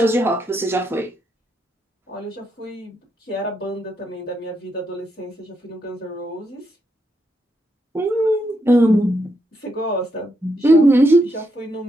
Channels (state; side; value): normal; both; correlation 0.80